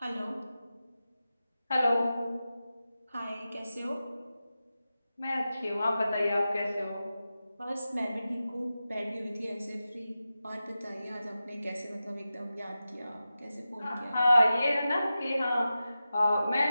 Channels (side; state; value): both; inverted; correlation -0.93